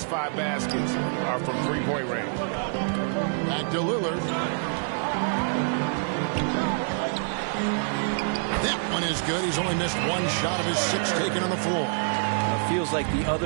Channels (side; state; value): left; silent; digital silence